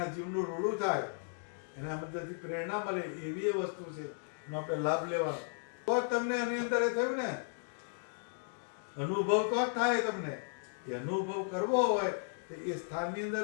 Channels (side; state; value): right; silent; digital silence